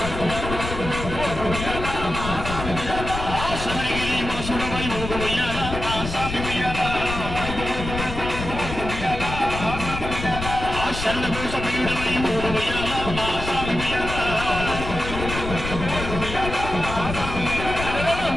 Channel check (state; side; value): noise; left; rumble, 7 dB below the sound